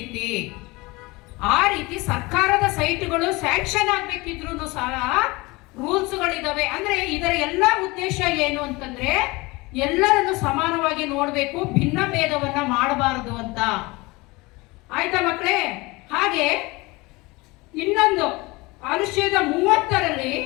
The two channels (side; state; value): right; quieter; 23.4 dB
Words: ಆ ರೀತಿ ಸರ್ಕಾರದ ಸೈಟ್ಗಳು ಸ್ಯಾಂಕ್ಷನ್ ಆಗ್ಬೇಕಿದ್ರು ಸಹ ರೂಲ್ಸ್ ಗಳಿದಾವೆ. ಅಂದ್ರೆ ಇದರ ಎಲ್ಲ ಉದ್ದೇಶ ಏನು ಅಂತಂದ್ರೆ ಎಲ್ಲರನ್ನು ಸಮಾನವಾಗಿ ನೋಡ್ಬೇಕು, ಭಿನ್ನ ಭೇದವನ್ನ ಮಾಡಬಾರದು ಅಂತ. ಆಯ್ತಾ ಮಕ್ಕಳೇ? ಹಾಗೆ ಇನ್ನೊಂದು ಅನುಚ್ಛೇದ 30ರಲ್ಲಿ